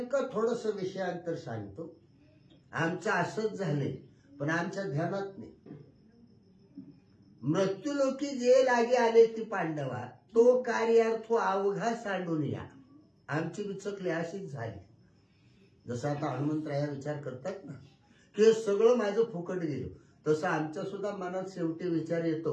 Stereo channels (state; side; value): identical; both; correlation 1.00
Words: थोडस विषयांतर सांगतो. आमचं असंच झालंय पण आमच्या ध्यानात नाही. मृत्यूलोकी जे लागे आले ती पांडवा, तो कार्यार्थ अवघा सांडून या. आमची विचकली अशीच झाली. जसं आता हनुमंतराया विचार करतात ना की सगळं माझं फुकट गेलं, तसं आमच्या सुद्धा मनात शेवटी विचार